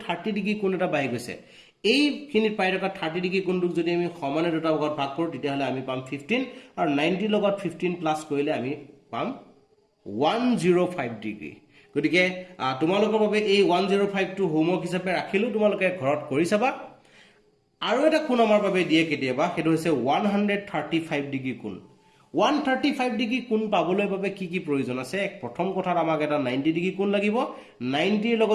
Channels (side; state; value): both; identical; correlation 1.00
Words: 30 ডিগ্ৰী কোণ এটা বাঢ়ি গৈছে এইখিনিত পাই থকা 30 ডিগ্ৰী কোণটোক যদি আমি সমানে দুটা ভাগত ভাগ কৰো তেতিয়াহলে আমি পাম 15 আৰু 90 লগত 15 প্লাস কৰিলে আমি পাম 105 ডিগ্ৰী গতিকে তোমালোকৰ বাবে এই 105 টো হোমৱৰ্ক হিচাপে ৰাখিলো তোমালোকে ঘৰত কৰি চাবা আৰু এটা কোণ আমাৰ বাবে দিয়ে কেতিয়াবা হেতু হৈছে 135 ডিগ্ৰী কোণ 135 ডিগ্ৰী কোণ পাবলৈ বাবে কি কি প্ৰয়োজন আছে প্ৰথম কথাত আমাক এটা 90 ডিগ্ৰী কোণ লাগিব 90 ৰ